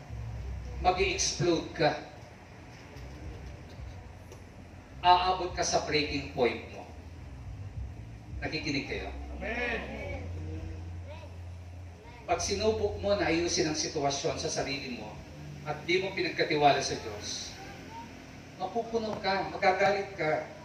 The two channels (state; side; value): identical; both; correlation 1.00